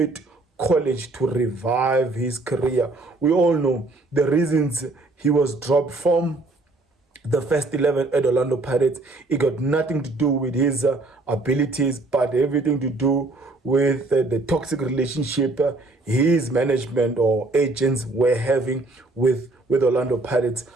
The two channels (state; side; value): quieter; left; 3.1 dB